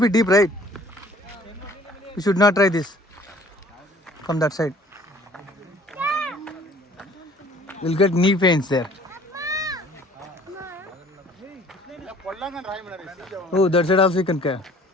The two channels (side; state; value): both; normal; correlation 0.53